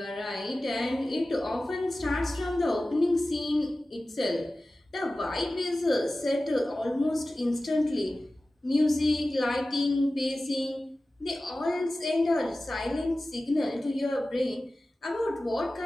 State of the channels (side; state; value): both; normal; correlation 0.96